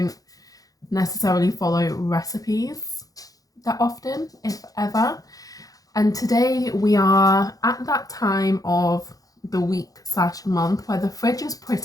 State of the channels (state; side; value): late; right; 0.17 ms